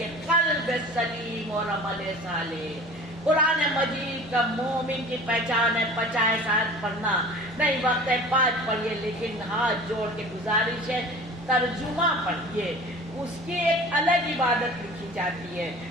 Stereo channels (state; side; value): normal; both; correlation 0.41